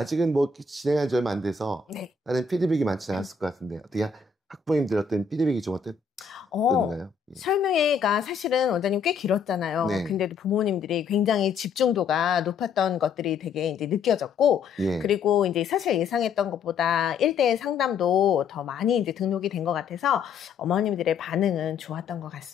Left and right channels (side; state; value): right; quieter; 5.6 dB